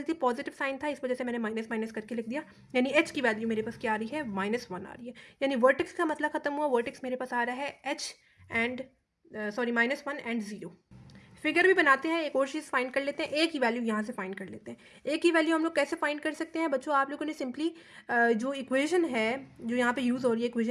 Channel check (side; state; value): both; identical; correlation 1.00